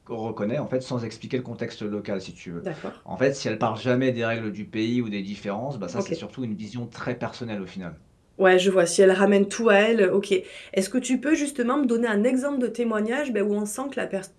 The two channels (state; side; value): identical; both; correlation 1.00